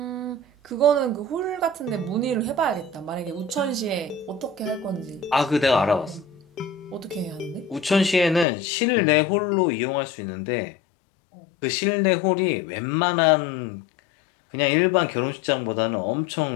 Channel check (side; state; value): right; drops out; at 8.5 s